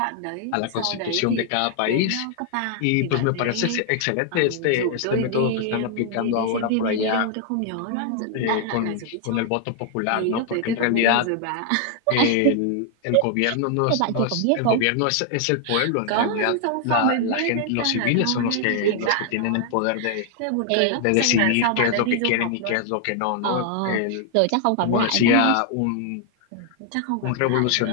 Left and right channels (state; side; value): different; both; correlation 0.00